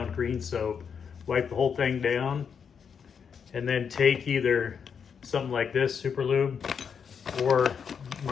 green soap. Wipe the whole thing down, and then take either something like this, Super Lube, or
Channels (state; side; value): quieter; right; 6.8 dB